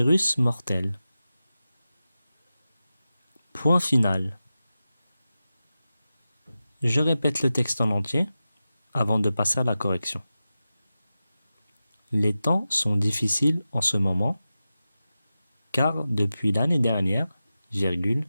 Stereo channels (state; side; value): inverted; both; correlation -0.93